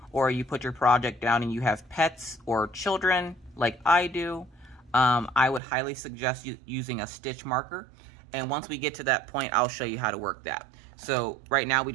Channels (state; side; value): drops out; left; at 5.6 s